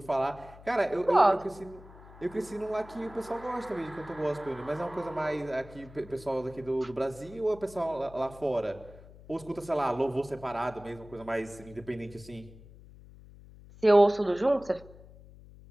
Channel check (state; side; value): noise; left; hum, 20 dB below the sound